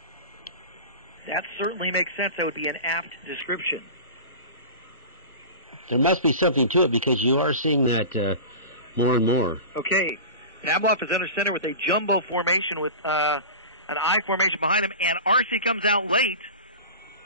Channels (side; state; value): both; inverted; correlation -0.32